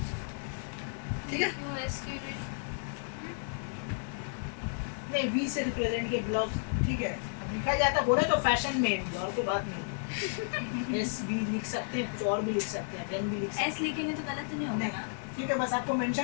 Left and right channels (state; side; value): silent; right; digital silence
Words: ठीक है। क्यों एस क्यों नहीं? नहीं v से रिप्रेजेंट किया ब्लाउज, ठीक है, अब लिखा जाता बोला तो फैशन में, और कोई बात नहीं, एस भी लिख सकते हैं, और भी लिख सकते हैं, एन भी लिख सकते एस लिखेंगे तो गलत नहीं हैं, होगा नहीं, ना? ठीक है, बस आपको